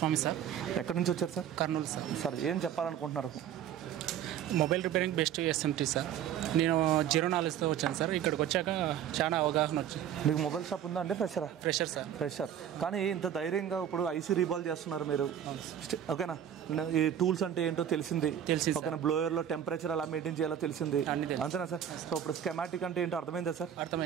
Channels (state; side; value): quieter; left; 9.8 dB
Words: సార్. ఎక్కడి నుంచి వచ్చారు సార్? కర్నూలు సార్. సార్ ఏం చెప్పాలనుకుంటున్నారు? Mobile repairing best SMT sir. నేను 0 knowledgeతో వచ్చాను సార్. ఇక్కడికి వచ్చాక చాలా అవగాహన వచ్చింది. మీకు మొబైల్ షాప్ ఉందా అంటే ఫ్రెషరా? Fresher sir. ఫ్రెషర్. కానీ ఇంత ధైర్యంగా ఇప్పుడు ఐసీ రీబాల్ చేస్తున్నారు మీరు, ఓకేనా? ఈ టూల్స్ అంటే ఏంటో తెలిసింది, ఓకేనా? బ్లోయర్లో టెంపరేచర్ ఎలా మెయింటైన్ చేయాలో తెలిసింది, అంతేనా సార్? సో ఇప్పుడు స్కెమాటిక్ అంటే ఏంటో అర్థమైందా సార్?